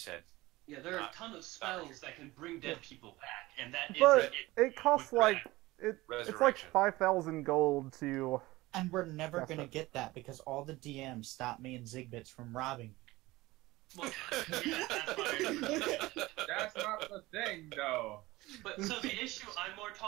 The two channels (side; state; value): left; quieter; 19.5 dB